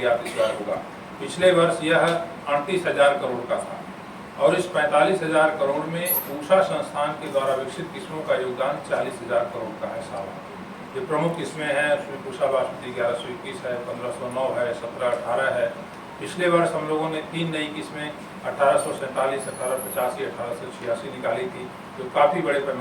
इस बार होगा। पिछले वर्ष यह 38,000 करोड़ का था और इस 45,000 करोड़ में पूसा संस्थान के द्वारा विकसित किस्मों का योगदान 40,000 करोड़ का है साल। ये प्रमुख किस्में हैं, उसमें पूसा बासमती 1121 है, 1509 है, 1718 है। पिछले वर्ष हम लोगों ने 3 नई किस्में 1847, 1885, 1886 निकाली थी, जो काफ़ी बड़े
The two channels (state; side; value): identical; both; correlation 1.00